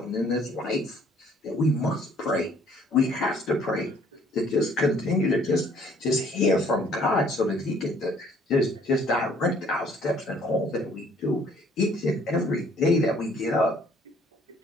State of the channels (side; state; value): both; normal; correlation 0.60